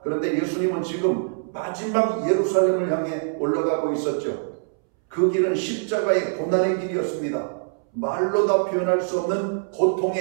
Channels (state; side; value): silent; left; 63 dB below the other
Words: 그런데 예수님은 지금 마지막 예루살렘을 향해 올라가고 있었죠. 그 길은 십자가의 고난의 길이었습니다. 말로 다 표현할 수 없는